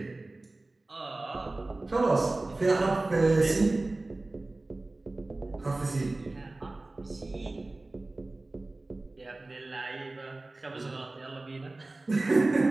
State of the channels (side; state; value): left; quieter; 3.0 dB